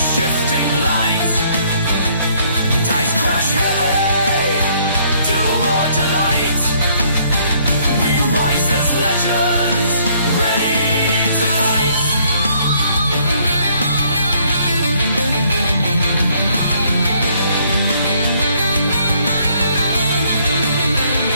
light. Dice crash heavy, doom or delight. We rise as legends, ready to fight.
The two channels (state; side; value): inverted; both; correlation -0.65